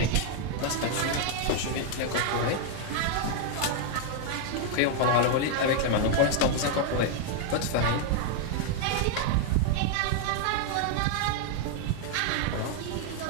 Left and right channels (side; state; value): both; different; correlation 0.00